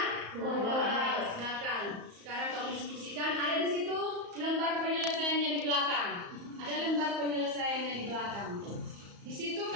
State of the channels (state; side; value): late; left; 34 ms